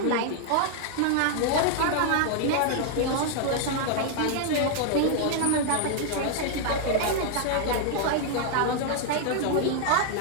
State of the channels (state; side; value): different; both; correlation 0.00